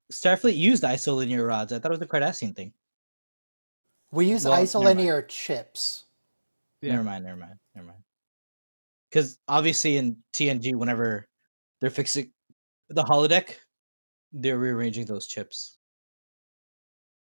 Starfleet used isolinear rods. I thought it was a Cardassian thing. We use Well, never mind. isolinear chips. Yeah. Never mind. Because obviously in TNG, whenever they're fixing the holodeck, they're rearranging those chips.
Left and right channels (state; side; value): inverted; both; correlation -1.00